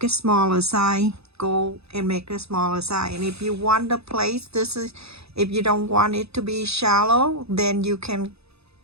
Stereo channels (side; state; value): left; late; 0.79 ms